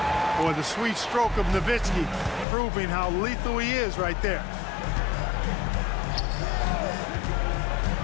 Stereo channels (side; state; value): right; drops out; at 2.5 s